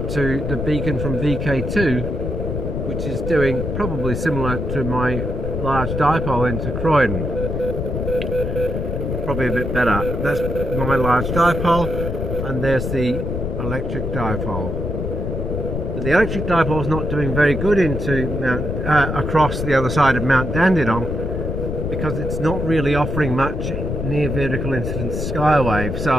to the beacon from VK2, which is doing probably similar to my large dipole into Croydon. Probably a bit better. That's my large dipole, and there's the electric dipole. But the electric dipole is not doing very good into across the other side of Mount Dandenong, because it's not really offering much near vertical incidence skywave,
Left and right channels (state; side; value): noise; left; rumble, 3 dB below the sound